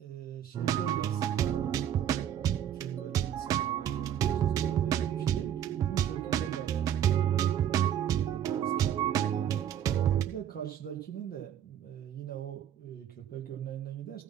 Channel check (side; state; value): left; quieter; 10.1 dB